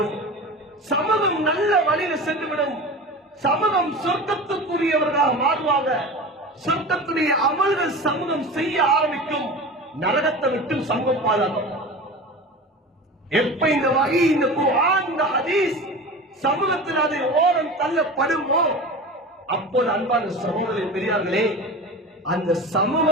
சமூகம் நல்ல வழியில சென்றுவிடும், சமூகம் சொர்க்கத்துக்குரியவர்களாக மாறுவாங்க, சொர்க்கத்துடைய அமல்கள் சமூகம் செய்ய ஆரம்பிக்கும், நரகத்தை விட்டு சமூகம் பாதுகாக்கும். எப்ப இந்த வகை இந்த குர்ஆன் இந்த ஹதீஸ் சமூகத்தில் அதை ஓரம் தள்ளப்படுமோ அப்போது அன்பான சகோதரர்களே பெரியார்களே அந்த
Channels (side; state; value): both; normal; correlation 0.32